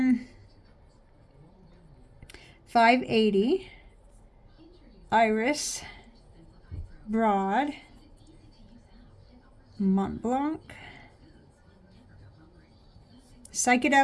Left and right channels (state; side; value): identical; both; correlation 1.00